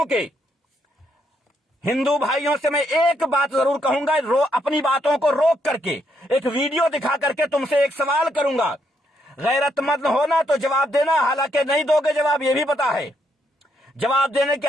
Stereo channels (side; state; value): both; normal; correlation 0.76